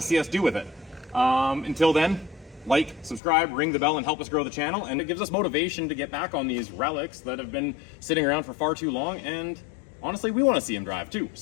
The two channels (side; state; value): right; drops out; at 3.2 s